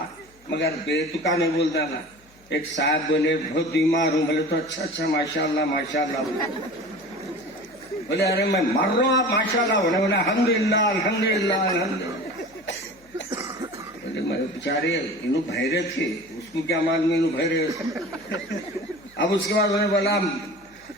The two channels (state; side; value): noise; left; hum, 29 dB below the sound